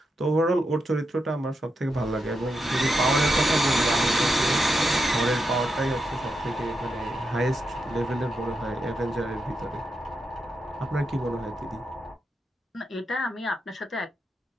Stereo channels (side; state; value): both; normal; correlation 0.85